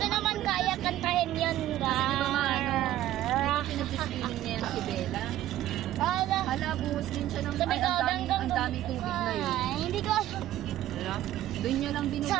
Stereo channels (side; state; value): left; quieter; 13.5 dB